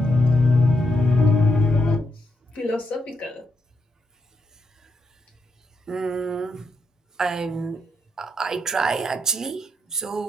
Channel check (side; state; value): both; normal; correlation 0.80